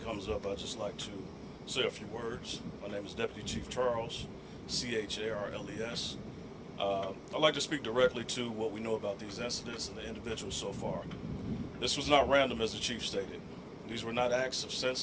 comes up, I'd just like to say a few words. My name is Deputy Chief Charles, Charles. I'd like to speak directly to what we know about these incidents and the individuals so far. This was not random, as the Chief stated. These were not acts of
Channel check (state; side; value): identical; both; correlation 1.00